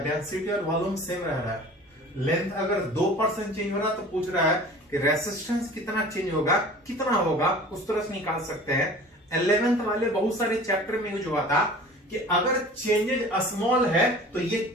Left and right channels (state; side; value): normal; both; correlation 0.43